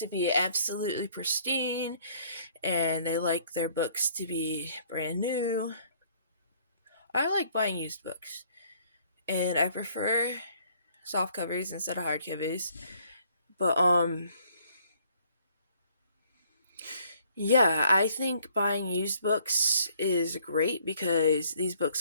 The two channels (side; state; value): both; inverted; correlation -0.62